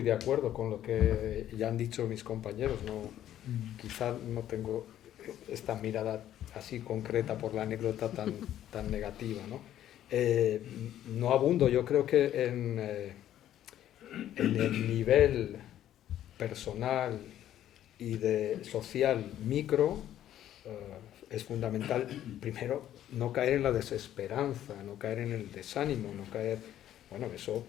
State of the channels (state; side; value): quieter; right; 11.8 dB